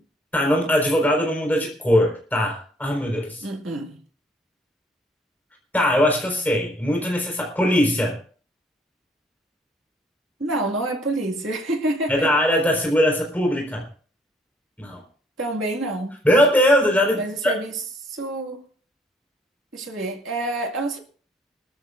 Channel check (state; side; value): normal; both; correlation 0.64